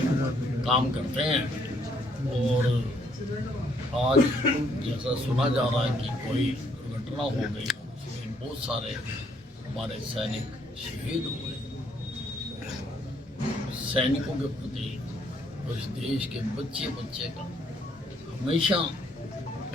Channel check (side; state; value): both; normal; correlation 0.68